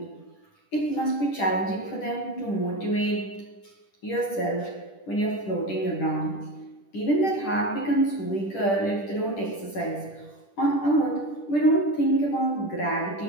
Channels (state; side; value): late; right; 10 ms